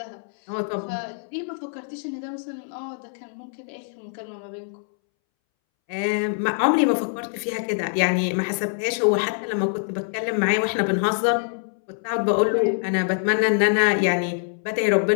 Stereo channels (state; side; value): silent; right; 62 dB below the other